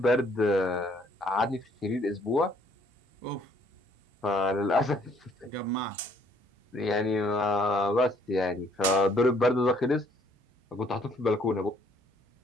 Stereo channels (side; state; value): both; normal; correlation 0.64